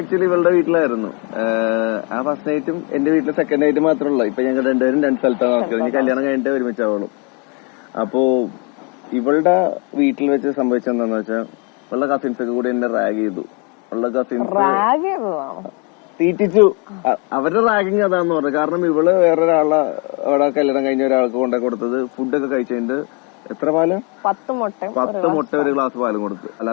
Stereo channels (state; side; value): quieter; right; 33.3 dB